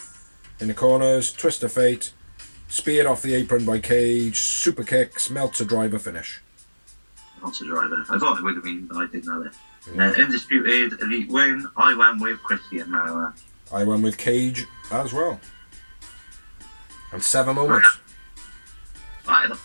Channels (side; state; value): both; inverted; correlation -1.00